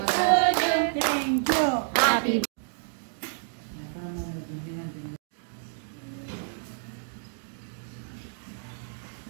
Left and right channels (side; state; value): left; silent; digital silence